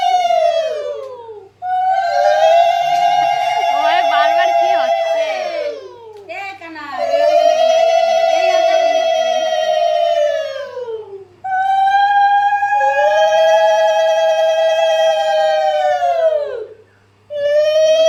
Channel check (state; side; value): identical; both; correlation 1.00